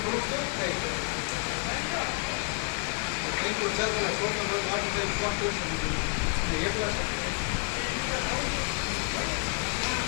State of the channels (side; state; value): right; quieter; 38.5 dB